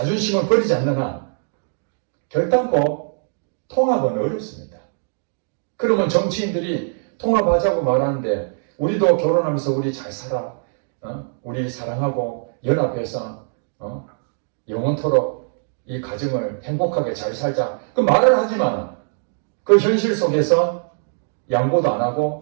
버리지 않는 한 결단코 통합은 어렵습니다. 그러면 정치인들이 통합하자고 말하는데 우리도 결혼하면서 우리 잘 살아, 우리 사랑하고 연합해서 영원토록 이 가정을 행복하게 잘 살자. 그 말을 하지만 그 현실 속에서 양보도 안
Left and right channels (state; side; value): silent; left; digital silence